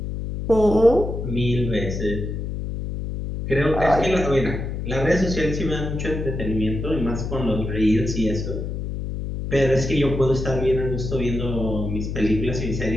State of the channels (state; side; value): noise; left; hum, 4 dB below the sound